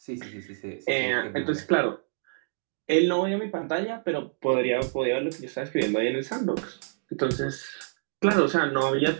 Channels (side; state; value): left; silent; digital silence